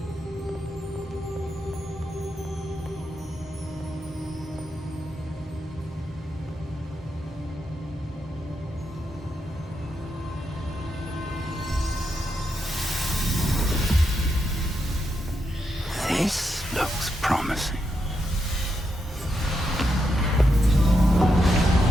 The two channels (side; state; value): both; normal; correlation 0.83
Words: This looks promising.